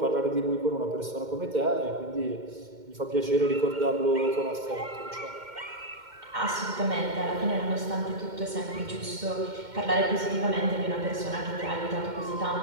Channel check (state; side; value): late; left; 2.1 ms